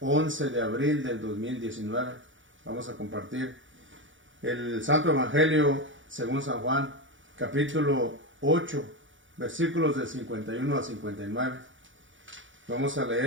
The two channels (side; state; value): left; late; 0.56 ms